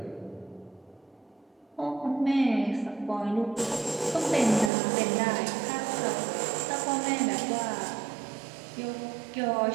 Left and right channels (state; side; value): drops out; left; at 4.7 s